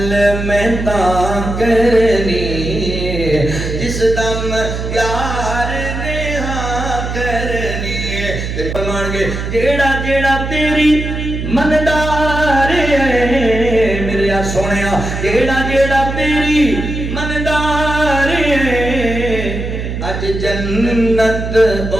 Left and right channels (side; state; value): right; noise; hum, 4 dB below the sound